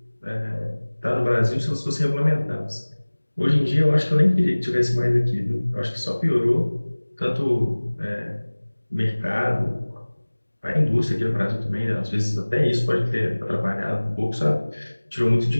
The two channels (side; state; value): both; inverted; correlation -1.00